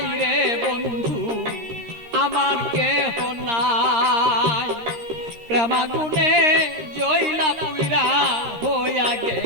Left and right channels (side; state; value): left; late; 13 ms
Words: রে বন্ধু, আমার কেহ নাই। প্রেমাগুনে জইলা পুরা হইয়া